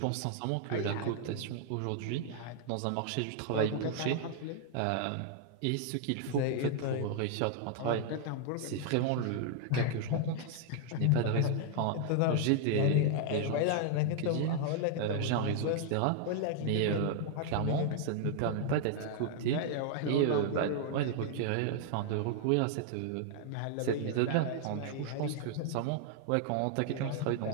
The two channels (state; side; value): different; both; correlation 0.00